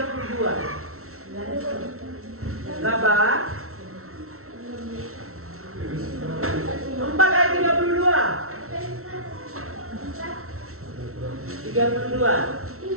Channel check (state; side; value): late; left; 0.63 ms